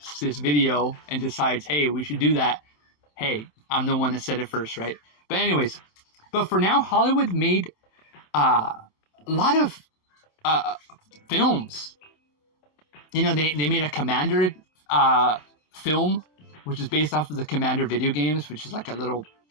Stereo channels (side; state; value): right; late; 27 ms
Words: this video and decides, hey, we should do that. Hey, I'm the one that said it first, right? But anyways, but for now, Hollywood made a lot of films. You know, they made a Commander film, which is based off of the Commander video games, which is like a little